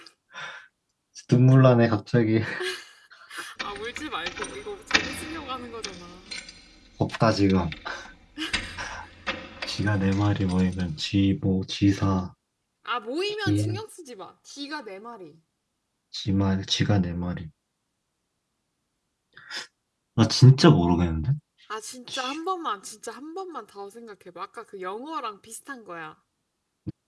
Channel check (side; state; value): both; identical; correlation 1.00